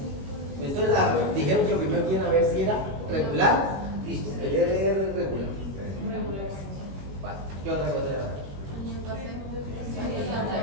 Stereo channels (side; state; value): left; late; 21 ms